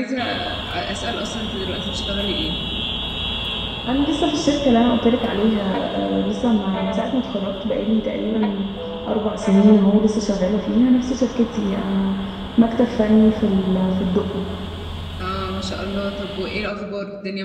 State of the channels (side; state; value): both; identical; correlation 1.00